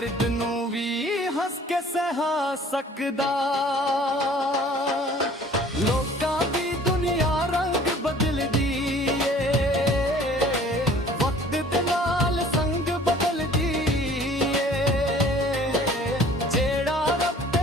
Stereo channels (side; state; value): both; normal; correlation 0.51